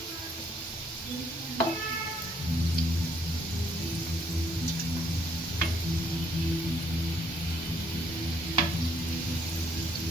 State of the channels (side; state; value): both; normal; correlation 0.67